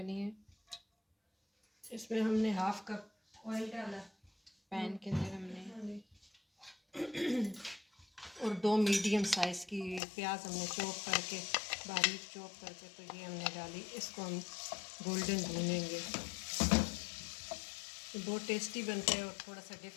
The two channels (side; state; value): right; drops out; at 10.0 s